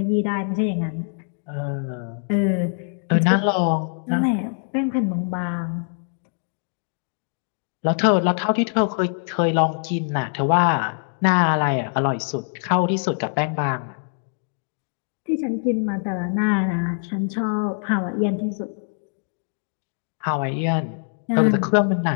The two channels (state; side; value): silent; right; digital silence